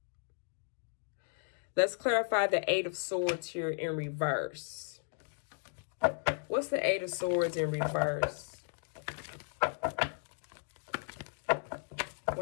Let's clarify the Eight of Swords here in reverse. What's the Eight of Swords in reverse?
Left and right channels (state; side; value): silent; right; digital silence